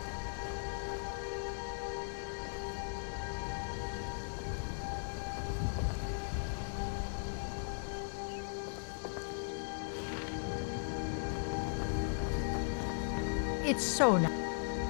It's so nice.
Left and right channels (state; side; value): silent; right; digital silence